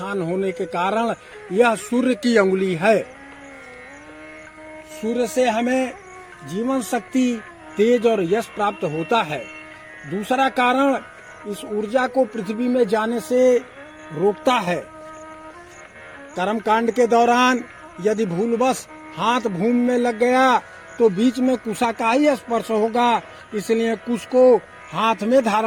होने के कारण यह सूर्य की अंगुली है। सूर्य से हमें जीवन शक्ति, तेज और यश प्राप्त होता है। दूसरा कारण, इस ऊर्जा को पृथ्वी में जाने से रोकता है। कर्मकांड के दौरान यदि भूलवश हाथ भूमि में लग गया तो बीच में कुशा का ही स्पर्श होगा, इसलिए कुश को हाथ में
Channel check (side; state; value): both; identical; correlation 1.00